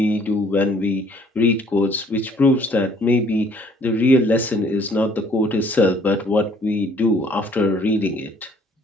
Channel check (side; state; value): both; normal; correlation 0.60